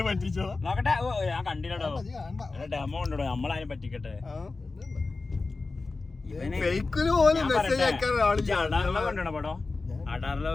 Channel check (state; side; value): quieter; right; 3.8 dB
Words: പറ്റിച്ചോ. നോക്കട്ടെ. ഓ ഞാൻ കണ്ടില്ലടോ, ഡെമോ ഉണ്ടോ, നമ്മളാരും പറ്റിക്കട്ടെ. കണ്ടോ പടോ?